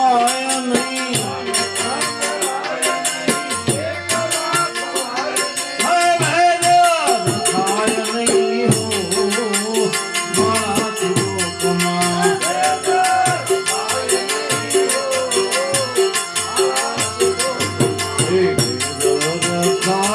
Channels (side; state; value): both; identical; correlation 1.00